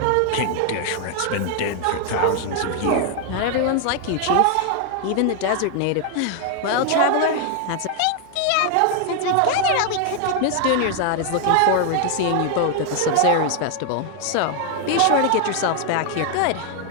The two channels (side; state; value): both; different; correlation 0.00